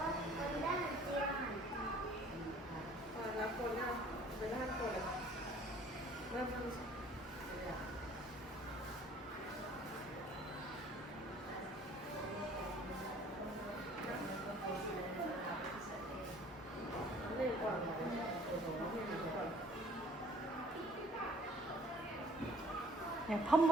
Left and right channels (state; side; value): normal; both; correlation 0.55